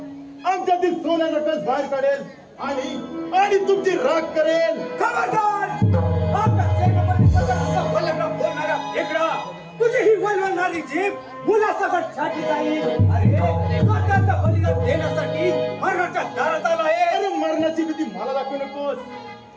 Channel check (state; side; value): identical; both; correlation 1.00